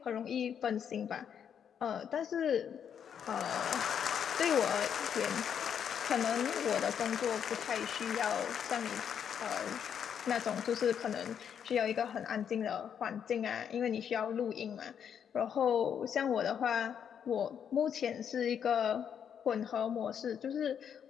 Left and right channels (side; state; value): right; quieter; 8.2 dB